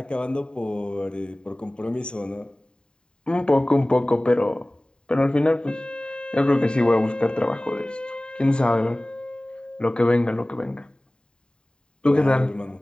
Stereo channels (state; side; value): late; right; 0.050 ms